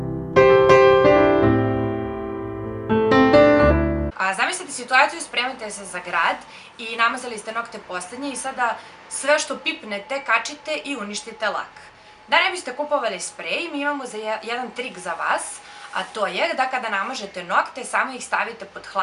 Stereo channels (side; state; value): both; identical; correlation 1.00